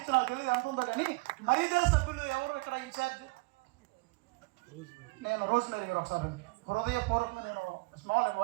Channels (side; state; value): left; quieter; 26.2 dB